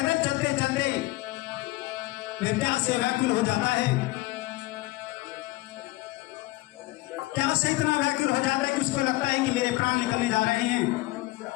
चलते चलते विद्या से व्याकुल हो जाता है। क्या से इतना व्याकुल हो जाता है कि उसको लगता है कि मेरे प्राण निकलने जा रहे हैं।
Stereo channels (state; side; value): quieter; right; 19.7 dB